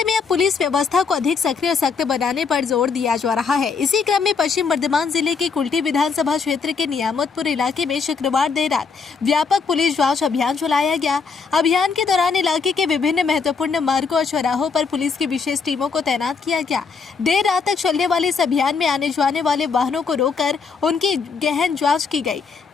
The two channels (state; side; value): quieter; right; 5.4 dB